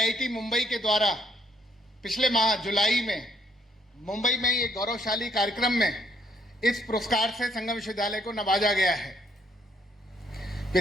मुंबई के द्वारा पिछले माह जुलाई में मुंबई में ये गौरवशाली कार्यक्रम में इस पुरस्कार से संगम विश्वविद्यालय को नवाजा गया है।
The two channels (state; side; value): normal; both; correlation 0.69